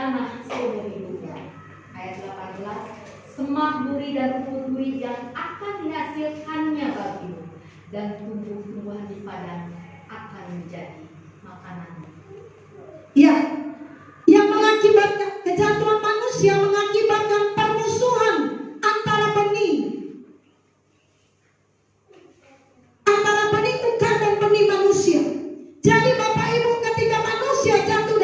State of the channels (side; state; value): both; identical; correlation 1.00